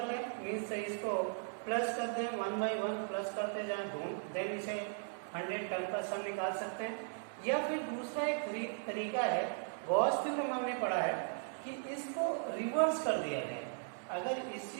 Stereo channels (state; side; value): silent; left; 53 dB below the other